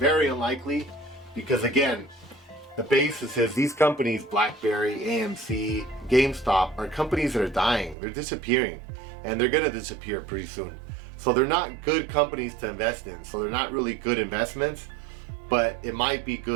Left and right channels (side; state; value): left; drops out; at 8.0 s